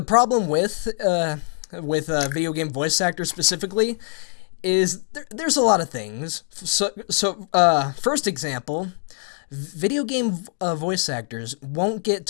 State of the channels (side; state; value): right; silent; 61 dB below the other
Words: problem with video game voice actors specifically is there's a lot of things. So first example, video game voice actors won't get